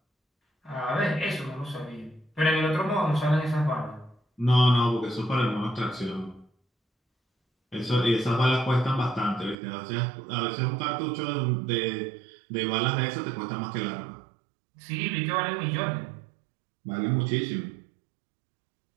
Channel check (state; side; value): drops out; left; at 9.6 s